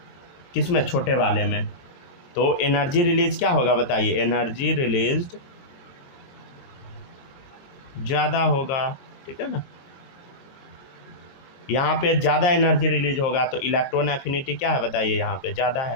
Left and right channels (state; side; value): late; right; 22 ms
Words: किसमें, छोटे वाले में, तो एनर्जी रिलीज क्या होगा बताइए, एनर्जी रिलीज्ड ज़्यादा होगा, ठीक है ना। यहाँ पे ज़्यादा एनर्जी रिलीज होगा तो इलेक्ट्रॉन एफिनिटी क्या है बताइए, यहाँ पे ज़्यादा